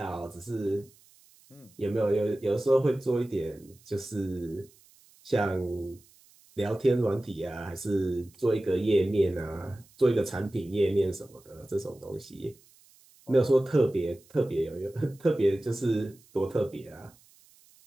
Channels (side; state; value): right; noise; hiss, 28 dB below the sound